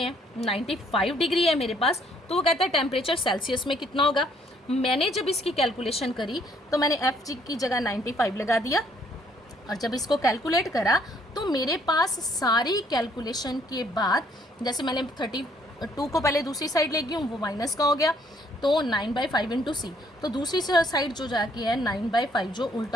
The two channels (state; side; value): normal; both; correlation 0.65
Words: है 95 डिग्री है मेरे पास, तो वो कहता है टेम्परेचर सेल्सियस में कितना होगा। मैंने जब इसकी कैलकुलेशन करी तो मैंने एफ जी की जगह 95 लगा दिया, और जब इसको कैलकुलेट करा तो मेरे पास सारी कैलकुलेशन के बाद, जैसे मैंने 32 को पहले दूसरी साइड ले गई हूँ, वो माइनस का हो गया, तो 9/5 इंटू सी, तो दूसरी साइड जो जाके है 9/5 जो